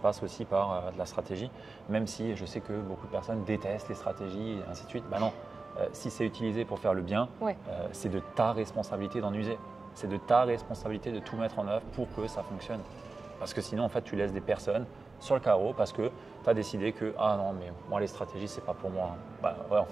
aussi par de la stratégie, même si je sais que beaucoup de personnes détestent les stratégies et ainsi de suite. Non, si c'est utilisé pour faire le bien, c'est de ta responsabilité d'en user. C'est de ta responsabilité de tout mettre en œuvre pour que ça fonctionne. Parce que sinon, en fait, tu laisses des personnes sur le carreau parce que tu as décidé que « Ah non, mais moi, les stratégies, c'est pas pour moi. » En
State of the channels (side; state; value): left; quieter; 3.8 dB